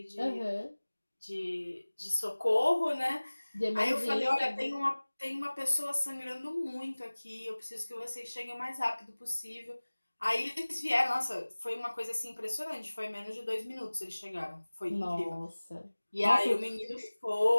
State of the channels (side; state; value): both; inverted; correlation -1.00